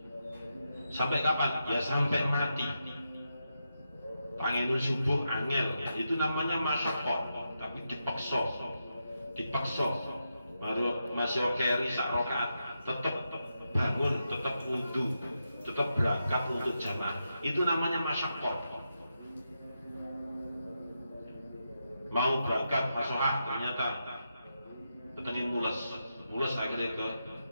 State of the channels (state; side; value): inverted; both; correlation -0.86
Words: sampai kapan? Ya sampai mati. Pangenu subuh angel, ya, itu namanya masyaqqah, tapi dipaksa. Baru masih keri sak rakaat, tetap bangun, tetap wudu, tetap berangkat untuk jamaah. Itu namanya masyaqqah. Mau berangkat fasohah, ternyata ketengin mules akhirnya ke